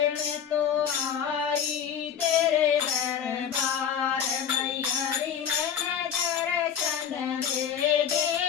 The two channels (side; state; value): right; quieter; 8.3 dB